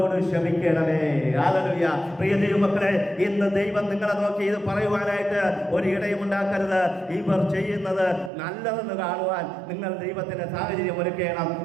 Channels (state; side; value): drops out; left; at 8.3 s